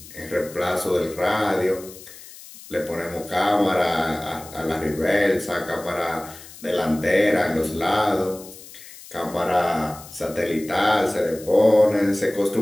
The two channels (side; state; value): left; noise; hiss, 18 dB below the sound